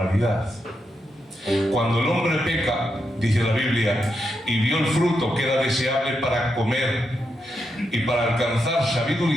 Cuando el hombre peca, dice la Biblia, y vio el fruto que era deseable para comer y para alcanzar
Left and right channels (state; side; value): normal; both; correlation 0.84